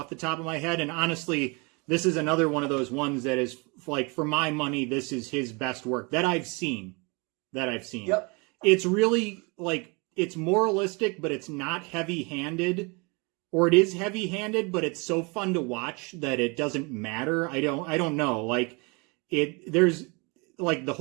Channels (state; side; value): quieter; left; 29.9 dB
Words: the top of my head. And honestly, this is another one of those ones that is like, for my money, this is his best work that I've seen. Yep. It's really like, it's moralistic, but it's not heavy-handed, or it is heavy-handed, but it's so fun to watch that it doesn't matter. I don't know. Like there's like the